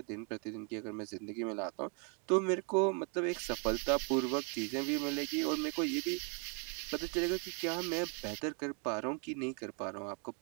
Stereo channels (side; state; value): left; quieter; 37.7 dB